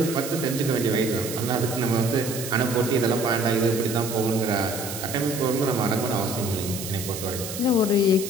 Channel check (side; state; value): right; noise; hiss, 8 dB below the sound